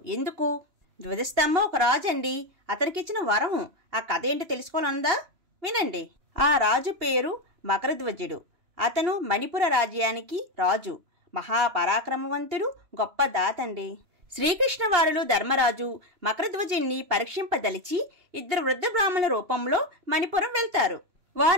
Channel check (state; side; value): late; left; 2.8 ms